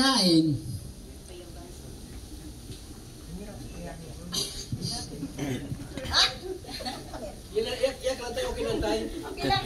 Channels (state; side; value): identical; both; correlation 1.00